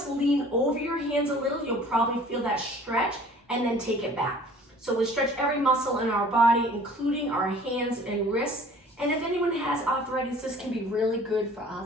lean over your hands a little. You'll probably feel that stretch, and then take it back. So we stretch every muscle in our body, including our hands and wrists. And if anyone has arthritis, this can be really good for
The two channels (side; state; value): both; normal; correlation 0.50